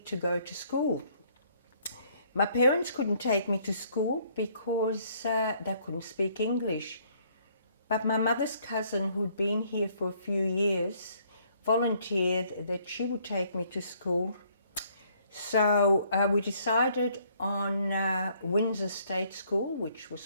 to go to school. My parents couldn't take me to school because they couldn't speak English. But my mother's cousin, who'd been here for a few years, volunteered that she would take me to school. So we decided on Windsor State School, which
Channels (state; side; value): inverted; both; correlation -0.65